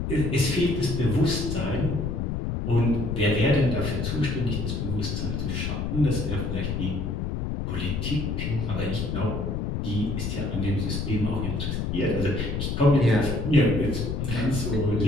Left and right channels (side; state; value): left; noise; rumble, 1 dB below the sound